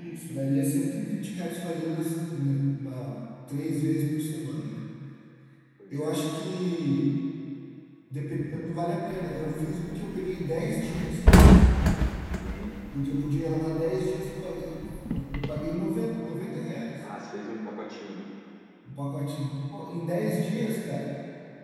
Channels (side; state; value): both; identical; correlation 1.00